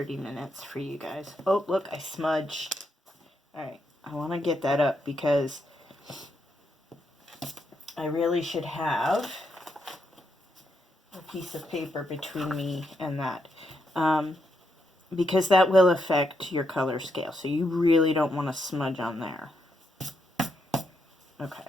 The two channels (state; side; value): normal; both; correlation 0.80